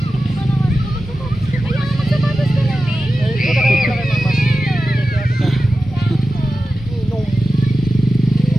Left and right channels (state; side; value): normal; both; correlation 0.93